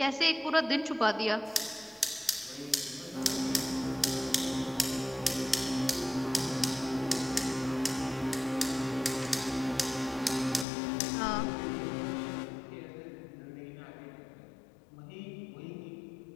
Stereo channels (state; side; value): drops out; right; at 10.7 s